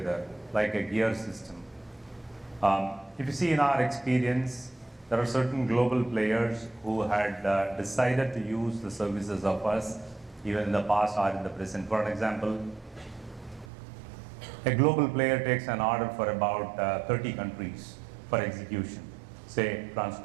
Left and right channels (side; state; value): left; drops out; at 13.7 s